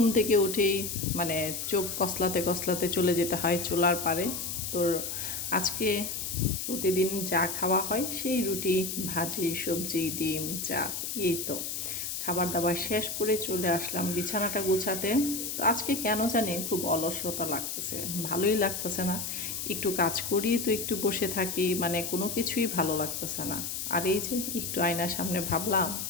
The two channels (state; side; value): noise; left; hiss, 4 dB below the sound